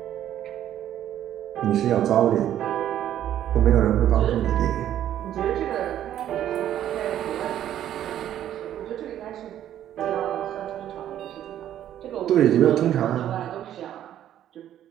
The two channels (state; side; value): quieter; left; 11.3 dB